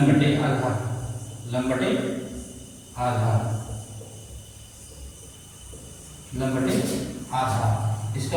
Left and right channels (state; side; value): identical; both; correlation 1.00